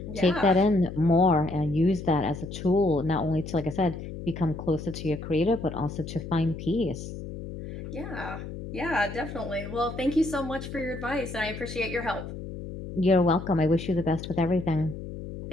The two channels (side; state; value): left; noise; hum, 9 dB below the sound